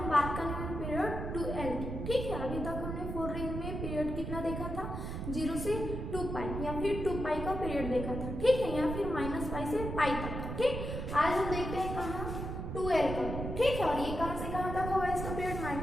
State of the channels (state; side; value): noise; right; rumble, 5 dB below the sound